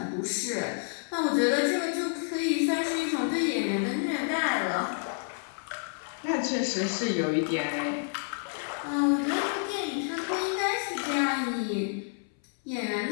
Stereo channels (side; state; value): right; silent; 58 dB below the other